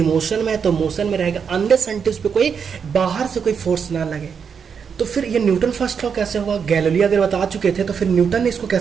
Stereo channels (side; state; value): left; quieter; 6.6 dB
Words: मोशन में है तो मोशन में रहेगा, अनलेस अनटिल उस पर कोई बाहर से कोई फोर्स ना लगे। तो फिर ये न्यूटन फर्स्ट लॉ कैसे हुआ? गैलीलियो अगर बता चुके थे तो फिर न्यूटन ने इसको